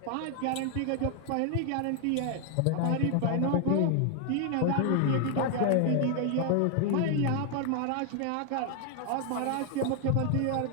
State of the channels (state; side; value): different; both; correlation 0.00